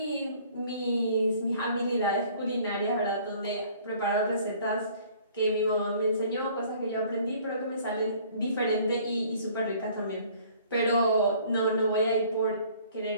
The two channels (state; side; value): inverted; both; correlation -0.55